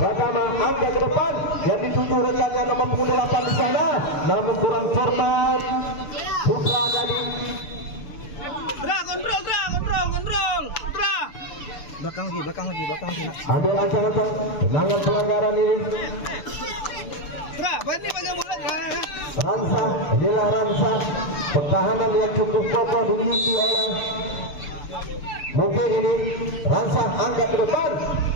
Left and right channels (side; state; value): right; late; 6.9 ms